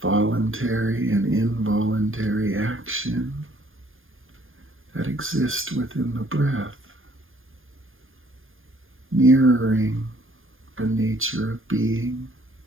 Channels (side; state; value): left; late; 0.59 ms